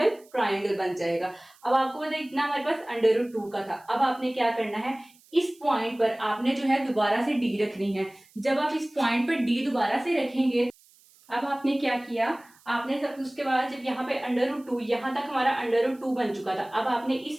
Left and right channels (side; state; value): right; noise; hiss, 29 dB below the sound